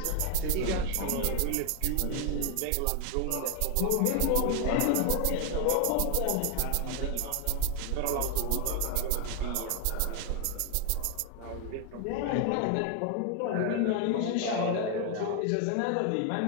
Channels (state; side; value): different; both; correlation 0.00